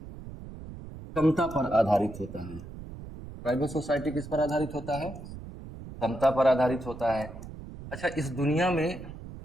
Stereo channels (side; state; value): right; noise; rumble, 13 dB below the sound